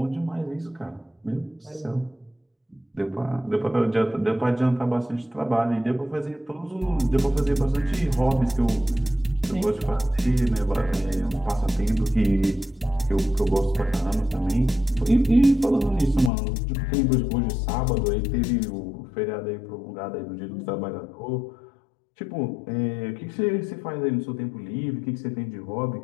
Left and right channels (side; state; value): right; drops out; at 16.3 s